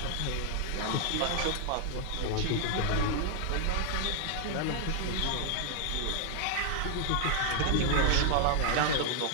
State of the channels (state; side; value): different; both; correlation 0.00